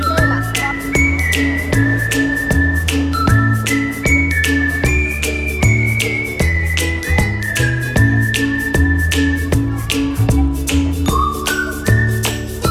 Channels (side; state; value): both; identical; correlation 1.00